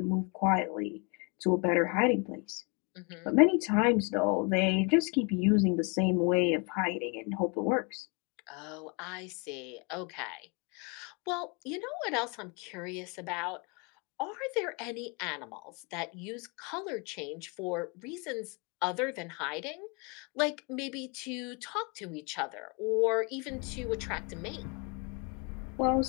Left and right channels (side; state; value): right; quieter; 32.7 dB